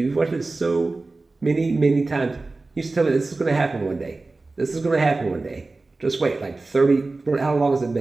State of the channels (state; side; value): quieter; left; 3.4 dB